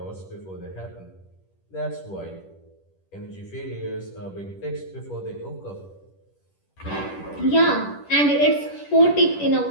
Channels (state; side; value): late; right; 10 ms